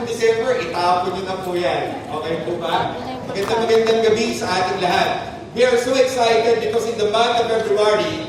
December, itapon nyo na po yan. Okay po ba? Magandang gabi sa ating lahat. We are so excited because in the month of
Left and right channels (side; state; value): both; identical; correlation 1.00